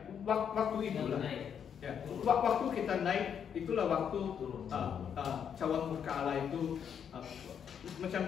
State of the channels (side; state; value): right; quieter; 7.9 dB